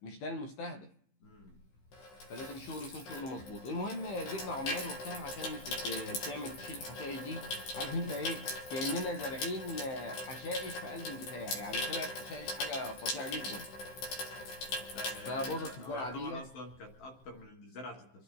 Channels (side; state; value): right; late; 15 ms